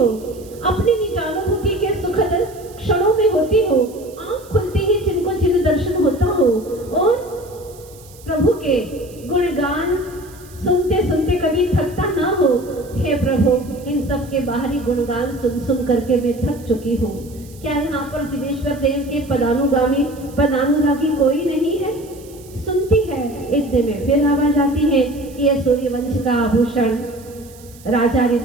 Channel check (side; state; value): right; noise; hiss, 23 dB below the sound